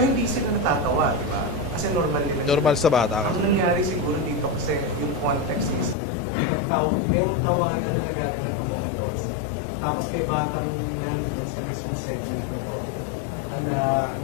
hindi sila natatawa, di ba? Kasi normal nila. Normal sa bata. Ang nangyari siguro dito kasi yung context is merong tawanan na nagaganap among adults. Tapos may batang nandoon sa mismong segment na to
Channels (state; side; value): drops out; right; at 6.0 s